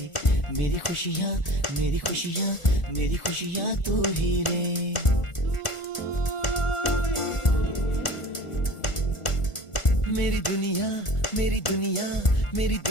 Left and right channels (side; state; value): right; late; 1.4 ms